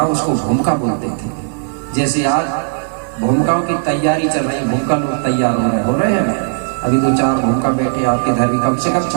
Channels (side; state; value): left; silent; digital silence